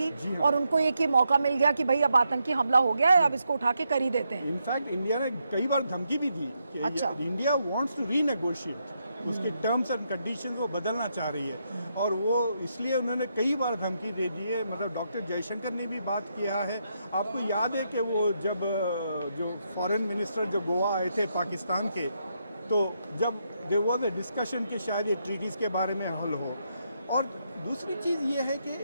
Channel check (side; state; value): both; inverted; correlation -0.80